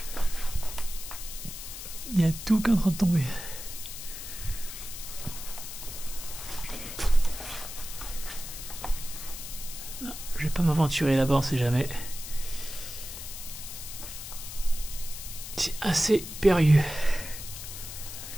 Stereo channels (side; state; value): left; noise; hiss, 9 dB below the sound